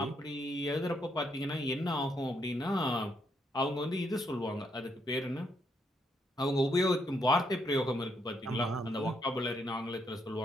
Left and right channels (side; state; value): both; normal; correlation 0.76